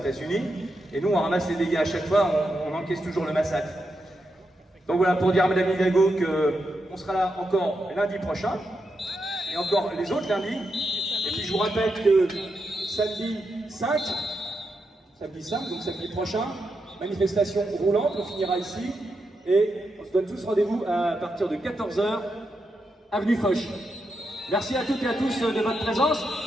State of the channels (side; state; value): both; normal; correlation 0.85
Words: Et nous, on ramasse les dégâts à chaque fois, on encaisse toujours le massacre. Donc voilà, pour dire à Madame Hidalgo qu'on sera là encore lundi prochain, et encore les autres lundis. Et puis je vous rappelle que samedi 5, donc samedi prochain, manifestation roulante, on finira ici, et on se donne tous rendez-vous à partir de 14h, avenue Foch. Merci à toutes et à tous de votre présence,